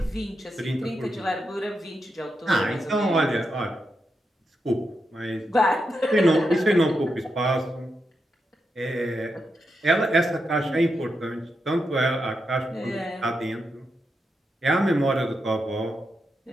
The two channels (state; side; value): normal; both; correlation 0.85